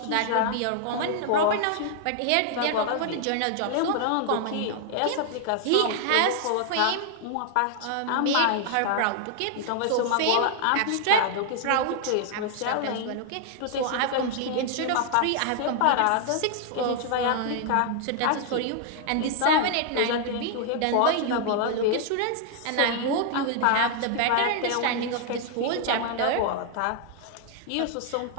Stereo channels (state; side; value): different; both; correlation 0.00